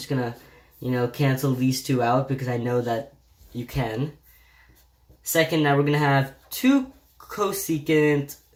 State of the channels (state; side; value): identical; both; correlation 1.00